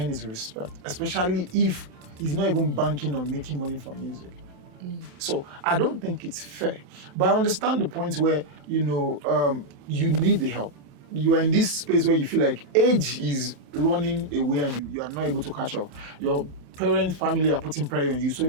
his respect, especially if he's not even banking on making money from music. So I don't think it's fair. But I understand the point where, you need the help. You are in this space where you feel like age is running away and you are not able to catch up. Your parents, family are putting pressure on you. So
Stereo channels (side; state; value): left; late; 27 ms